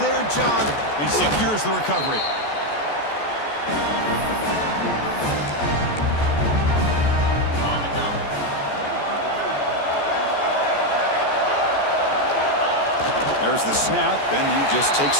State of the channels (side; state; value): right; late; 14 ms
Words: their job and secures the recovery. There's the snap, and he just